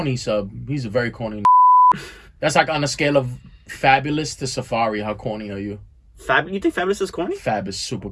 sub. He's a very corny. That's like on a scale of Fabulous to Safari. How corny are you? You think Fabulous is corny? Fab is super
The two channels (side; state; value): both; identical; correlation 1.00